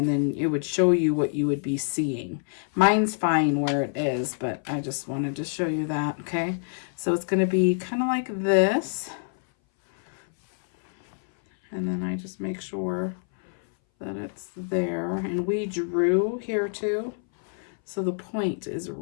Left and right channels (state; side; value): silent; right; 59 dB below the other